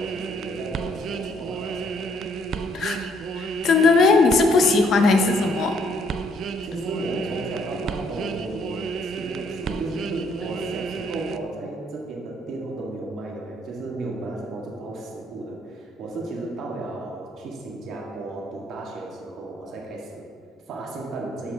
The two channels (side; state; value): both; normal; correlation 0.67